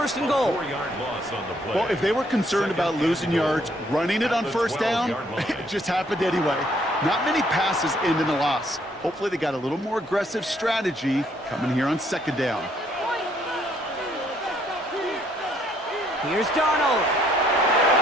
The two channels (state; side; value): normal; both; correlation 0.68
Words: and goal. 4-yard loss on the play. Well, if they were concerned about losing yards, running it on 1st down, it just happened anyway. Not many passes end in a loss. Hopefully they got a little more aggressive strategy coming here on 2nd down. Here's Darnold.